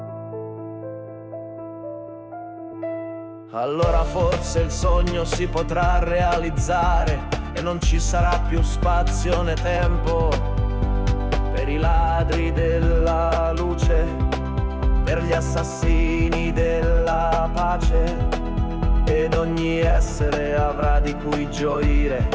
Allora forse il sogno si potrà realizzare e non ci sarà più spazio né tempo per i ladri della luce, per gli assassini della pace. Ed ogni essere avrà di cui gioire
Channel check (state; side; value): identical; both; correlation 1.00